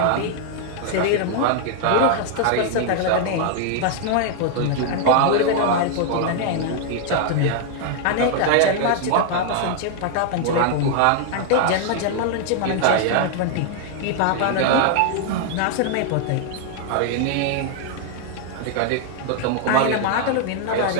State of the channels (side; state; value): both; different; correlation 0.00